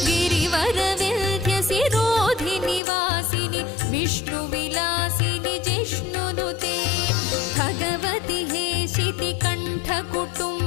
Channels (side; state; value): right; drops out; at 2.8 s